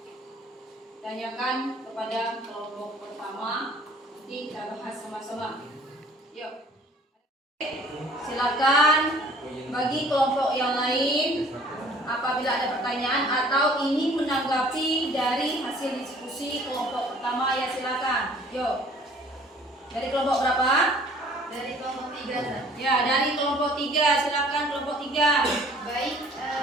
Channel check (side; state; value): both; normal; correlation 0.53